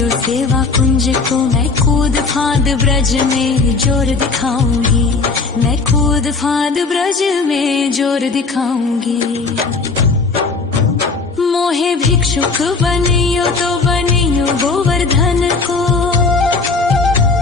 सेवा कुंज को। मैं कूद फांद ब्रज में जोर दिखाऊंगी। मैं कूद फांद ब्रज में जोर दिखाऊंगी। मोहे भिक्षुक बनियो तो बनियो गोवर्धन को।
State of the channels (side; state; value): right; quieter; 4.1 dB